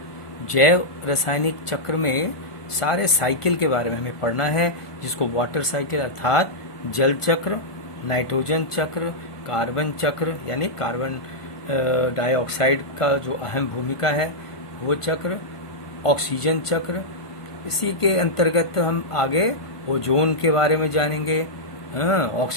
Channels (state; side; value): late; right; 1.4 ms